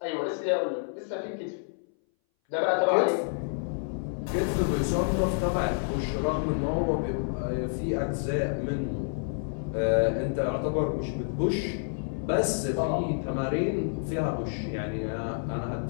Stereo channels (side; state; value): right; silent; 59 dB below the other